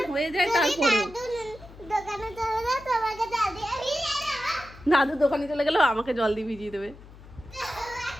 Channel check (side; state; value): left; noise; hum, 19 dB below the sound